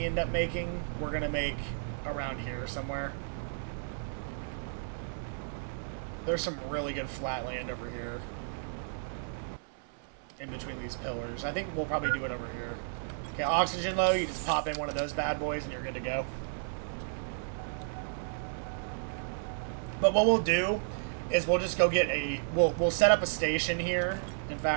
end up making, we're going to make around here somewhere. There's some really good flat land over here. In between these pillars. I think we'll probably do it over here. Okay, oxygen low, you just pop in one of those bad boys and you're good to go. But what we'll do is we'll just go get a... We'll set up a station here. In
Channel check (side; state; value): left; silent; 56 dB below the other